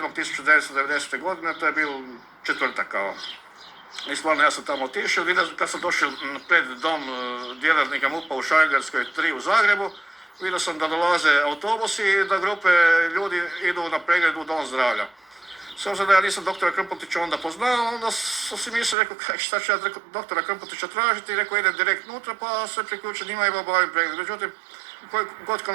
godine, to je bio četvrtak kao. I stvarno ja sam tamo otišao, kad sam došao pred dom djelatnika MUP-a u Šarengradskoj 3 u Zagrebu, vidio sam da dolaze autobusi i da grupe ljudi idu na pregled u Dom zdravlja. S obzirom da ja nisam doktora Krmpotića onda poznao, onda sam si mislio, rekao, šta ću ja doktora Krmpotića tražiti, i rekao, idem direkt unutra, pa se priključim njima i obavim pregled. Međutim, koji god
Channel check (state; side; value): drops out; left; at 18.9 s